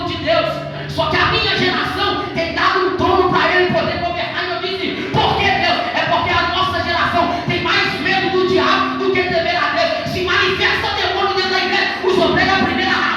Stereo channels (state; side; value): identical; both; correlation 1.00